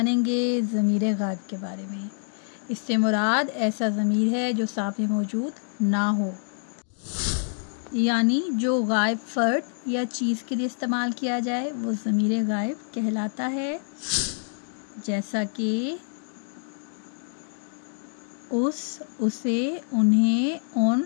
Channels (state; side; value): silent; right; digital silence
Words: ज़मीर गायब के बारे में। इससे मुराद ऐसा ज़मीर है जो सामने मौजूद ना हो। यानी जो गायब फ़र्द या चीज़ के लिए इस्तेमाल किया जाए वो ज़मीर गायब कहलाता है, जैसा कि उस, उसे, उन्हें, उन